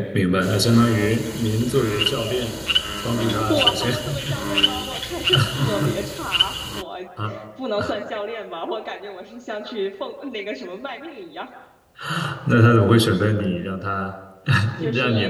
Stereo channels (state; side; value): identical; both; correlation 1.00